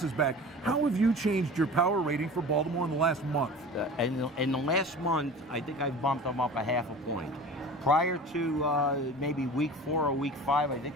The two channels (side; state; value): both; normal; correlation 0.38